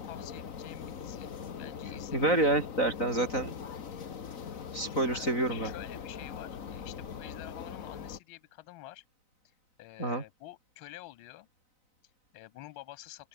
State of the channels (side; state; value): right; late; 3.9 ms